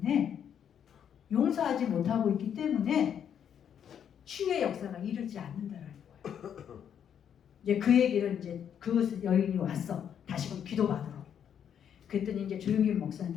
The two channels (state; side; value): quieter; right; 8.7 dB